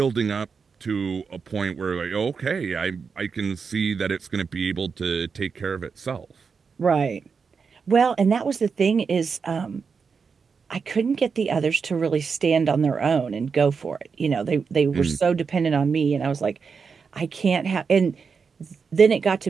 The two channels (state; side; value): quieter; left; 5.6 dB